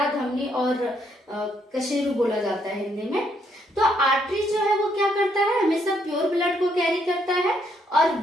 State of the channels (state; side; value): normal; both; correlation 0.73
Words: धमनी और कशेरू बोला जाता है हिंदी में। तो आर्टरी जो है वो क्या करता है, हमेशा प्योर ब्लड को कैरी करता है। और